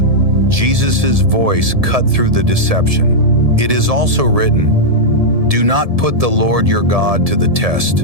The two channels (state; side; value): late; left; 1.7 ms